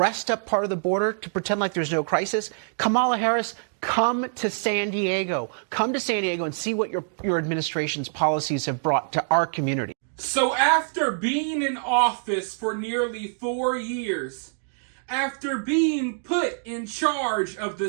up part of the border to pretend like there's no crisis. Kamala Harris, come to San Diego. Come to San Diego and see what your administration's policies have brought to our community. So after being in office for nearly 4 years, after being put in charge of the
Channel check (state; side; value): silent; left; digital silence